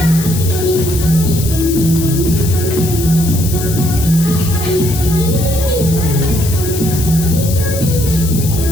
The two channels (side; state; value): left; noise; hiss, 8 dB below the sound